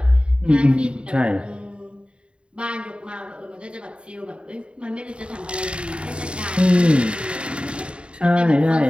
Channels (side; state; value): left; late; 0.056 ms